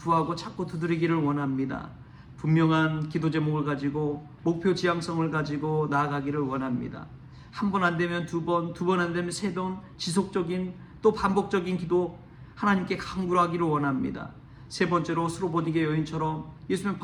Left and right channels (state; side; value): identical; both; correlation 1.00